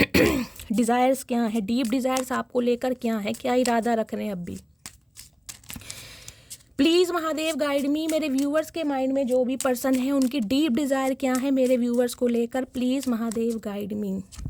डिज़ायर्स क्या है, डीप डिज़ायर्स आपको लेकर क्या है, क्या इरादा रख रहे हैं अब भी। प्लीज़ महादेव गाइड मी, मेरे व्यूअर्स के माइंड में जो भी पर्सन है उनकी डीप डिज़ायर क्या है मेरे व्यूअर्स को लेकर, please Mahadev guide me.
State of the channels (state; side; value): identical; both; correlation 1.00